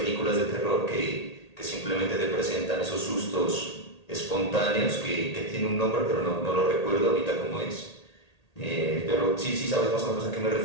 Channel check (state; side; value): late; right; 1.8 ms